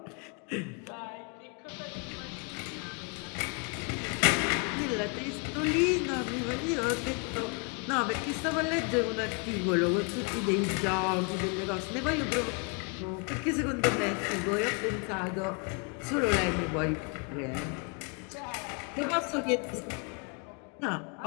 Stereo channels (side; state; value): right; quieter; 35.3 dB